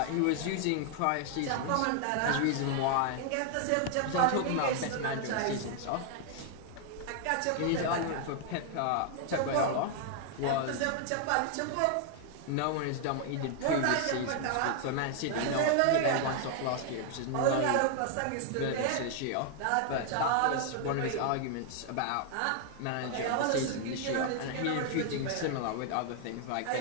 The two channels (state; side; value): different; both; correlation 0.00